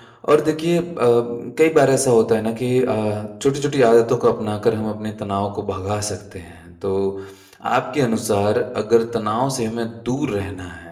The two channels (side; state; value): both; identical; correlation 1.00